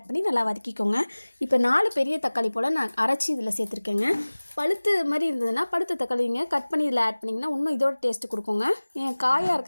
பண்ணி நல்லா வதக்கிக்கோங்க. இப்போ 4 பெரிய தக்காளி போல் நான் அரைச்சி இதில் சேர்த்துருக்கேங்க. பழுத்து மாதிரி இருந்ததுன்னா பழுத்த தக்காளிங்க கட் பண்ணி இதில் ஆட் பண்ணிங்கன்னா இன்னும் இதோட டேஸ்ட்டு கொடுக்குங்க. என் காயாக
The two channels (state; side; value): inverted; both; correlation -1.00